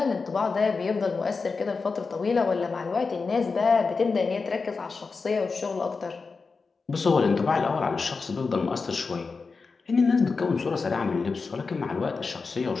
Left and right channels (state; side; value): quieter; right; 4.5 dB